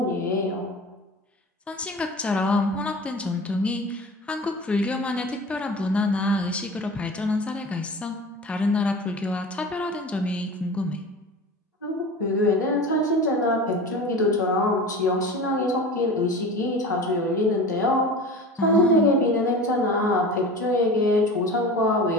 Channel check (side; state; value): both; normal; correlation 0.35